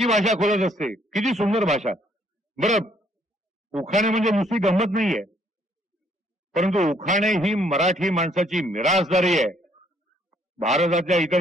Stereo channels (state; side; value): normal; both; correlation 0.66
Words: भाषा खोलत असते. किती सुंदर भाषा. बरं, उखाणे म्हणजे नुसती गंमत नाहीये, परंतु उखाणे ही मराठी माणसाची मिरासदारी आहे. भारतातल्या इतर